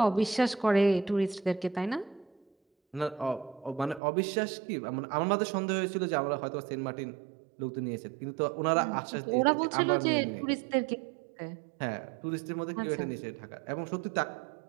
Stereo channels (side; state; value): left; drops out; at 4.0 s